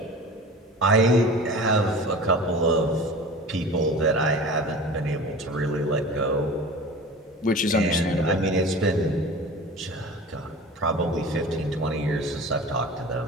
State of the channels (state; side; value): normal; both; correlation 0.36